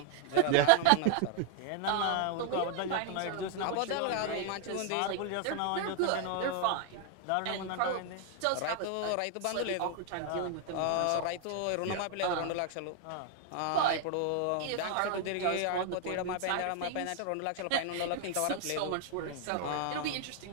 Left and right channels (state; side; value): different; both; correlation 0.00